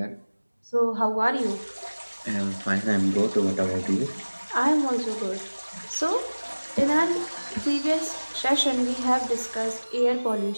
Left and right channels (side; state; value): both; inverted; correlation -1.00